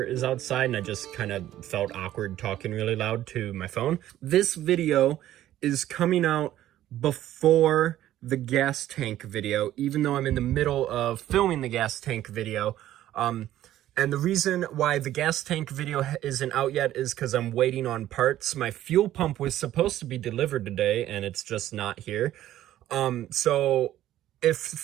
is outside and I just kind of felt awkward talking really loud to my phone. This video is coming out before the gas tank video, even though I'm in the middle of filming the gas tank video. And the reason why the gas tank video isn't out yet is because I'm waiting on parts. My fuel pump was supposed to be delivered today and it's just not here. So if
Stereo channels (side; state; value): left; quieter; 13.2 dB